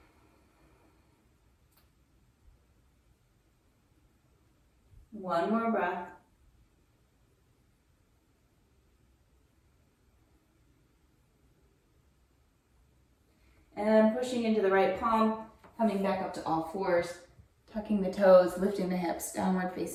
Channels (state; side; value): identical; both; correlation 1.00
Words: One more breath. And pushing into the right palm, coming back up to all fours, tucking the toes, lifting the hips, downward